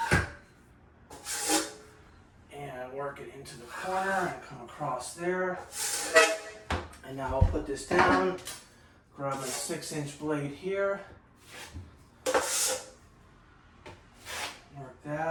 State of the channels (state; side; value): identical; both; correlation 1.00